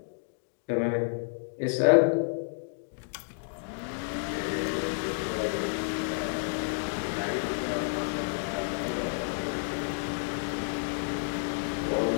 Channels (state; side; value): silent; right; digital silence